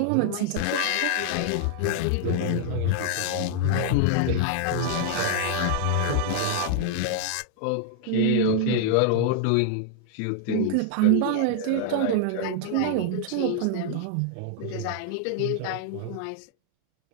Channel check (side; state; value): both; different; correlation 0.00